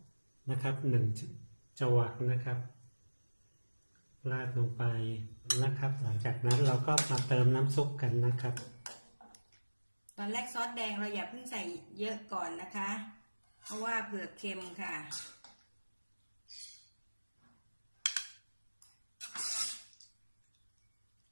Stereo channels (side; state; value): both; inverted; correlation -1.00